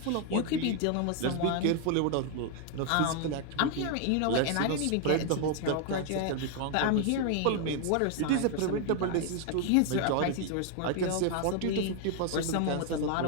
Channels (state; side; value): different; both; correlation 0.00